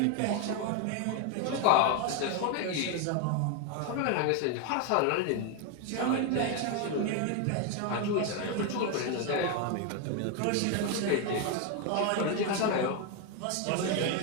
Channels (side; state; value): both; different; correlation 0.01